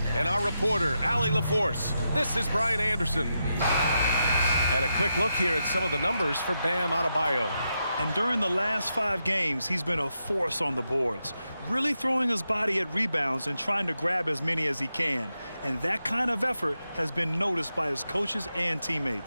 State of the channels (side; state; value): both; inverted; correlation -0.85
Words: and our reporter, Allie LaForce. This is Brian Anderson. And a quick look here at some of the numbers for Bam Adebayo. And during the last 5 games, he's been a force on the boards, really throwing his body at rebounds and trying to grab as many as he can. And that kind of effort has been noticed by his coaches and